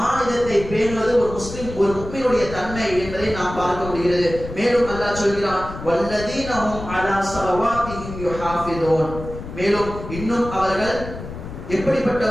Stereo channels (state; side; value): noise; left; rumble, 10 dB below the sound